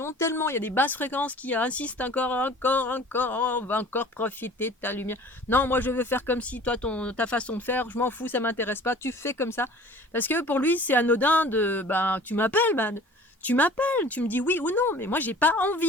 tellement il y a des basses fréquences qui insistent encore, on va encore profiter de ta lumière. Non, moi je veux faire comme si toi ta façon de faire, je m'en fous, ça m'intéresse pas. Tu fais comme ça parce que pour lui c'est anodin de tu m'appelles, tu m'appelles, tu me dis oui ou non. Mais moi j'ai pas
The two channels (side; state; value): both; normal; correlation 0.46